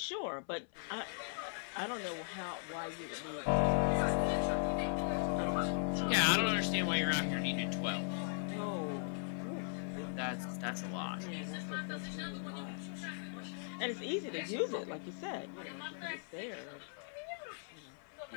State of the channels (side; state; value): right; silent; 52 dB below the other